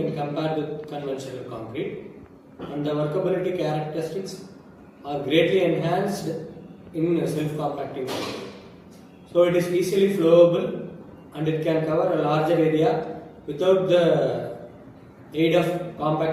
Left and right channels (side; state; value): both; identical; correlation 1.00